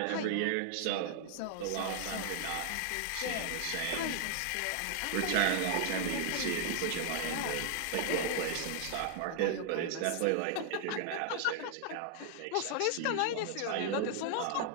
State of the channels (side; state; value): both; different; correlation 0.00